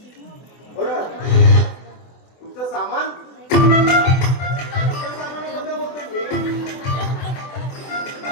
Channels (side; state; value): right; late; 24 ms